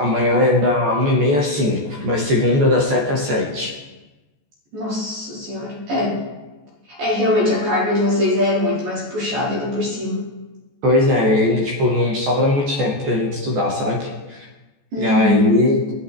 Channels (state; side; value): late; left; 14 ms